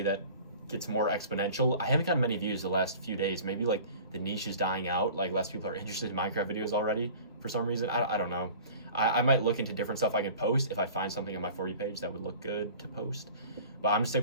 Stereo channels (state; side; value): inverted; both; correlation -0.43